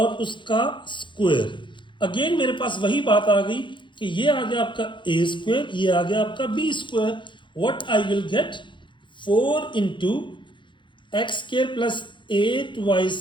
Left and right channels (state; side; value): late; right; 0.23 ms